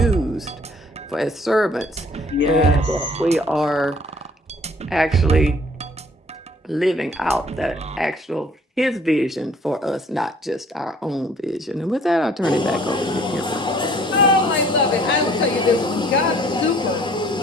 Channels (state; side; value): normal; both; correlation 0.57